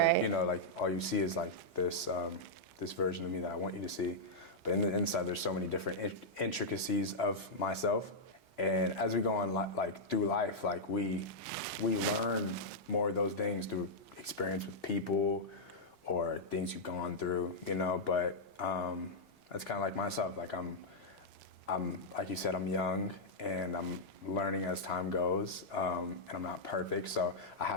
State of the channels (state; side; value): normal; both; correlation -0.06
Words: like, you know, like all you see is like this version of me that I want you to see. But in the inside, there's so many different intricacies of myself. And as we go on like through life, like we learn more of those things through experience with people or things you've gone through, you know. But that's kind of like myself. Like I'm like you said, I'm young and I'm learning as time goes, and I'm not perfect, so I